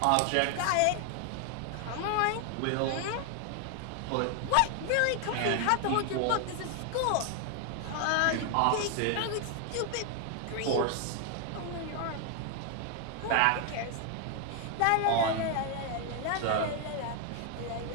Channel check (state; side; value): different; both; correlation 0.00